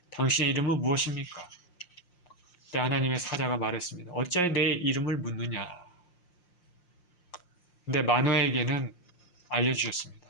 당신의 이름은 무엇입니까? 그때 하나님의 사자가 말했습니다. 어찌하여 내 이름을 묻느냐. 근데 마노아에게는 알려주셨습니다.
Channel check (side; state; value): right; late; 5.7 ms